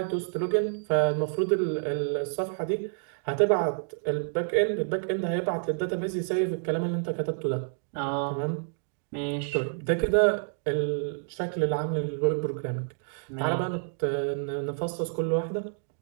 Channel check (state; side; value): silent; left; digital silence